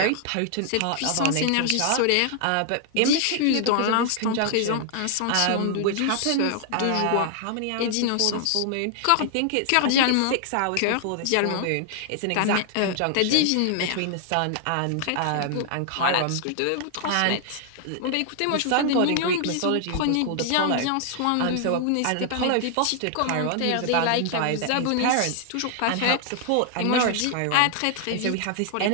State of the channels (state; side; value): different; both; correlation 0.00